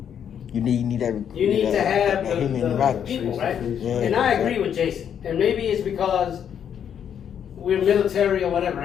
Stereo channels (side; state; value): right; quieter; 8.6 dB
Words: you need to have the people, right? Yeah, and I agree with Jason. And maybe it's because we're military or whatever,